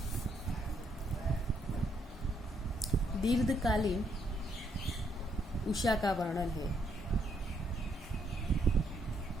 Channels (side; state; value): both; normal; correlation 0.74